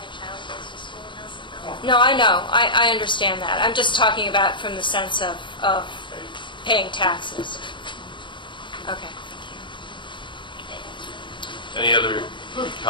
No, I know. I understand that. I'm just talking about from the sense of paying taxes. Okay. Any other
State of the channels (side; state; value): right; late; 0.23 ms